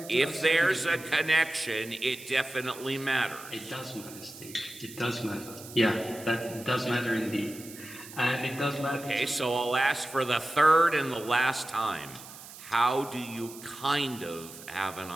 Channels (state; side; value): noise; right; hiss, 16 dB below the sound